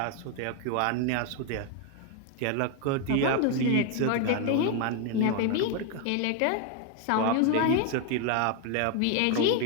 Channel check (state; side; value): different; both; correlation 0.01